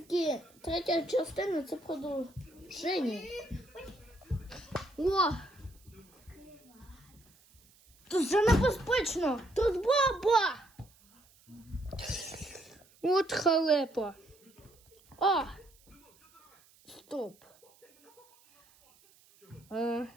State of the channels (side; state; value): right; noise; hiss, 29 dB below the sound